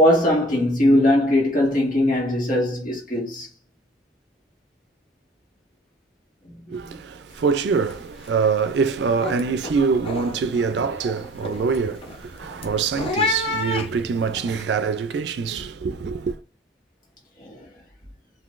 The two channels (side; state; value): both; normal; correlation 0.46